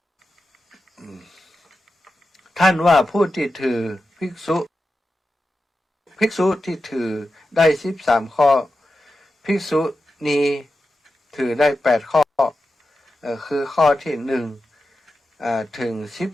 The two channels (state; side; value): normal; both; correlation 0.91